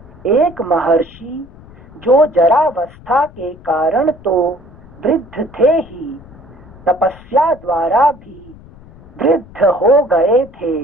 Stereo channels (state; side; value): noise; left; rumble, 22 dB below the sound